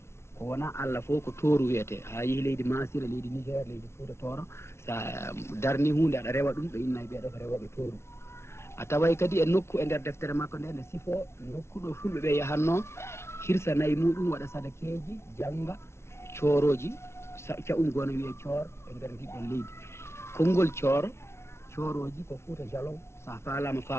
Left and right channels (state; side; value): late; right; 0.13 ms